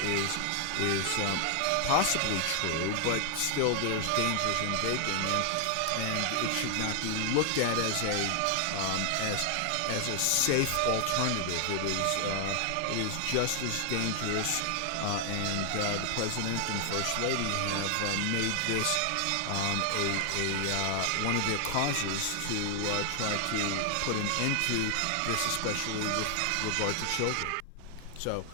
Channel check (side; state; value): both; different; correlation 0.00